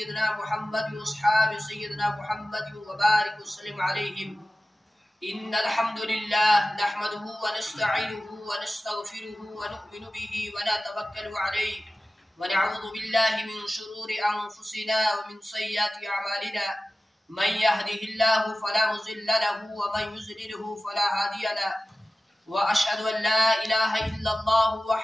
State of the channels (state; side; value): normal; both; correlation 0.96